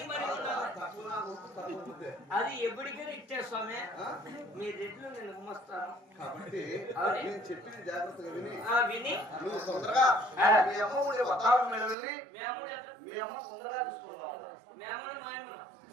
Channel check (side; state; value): left; drops out; at 12.0 s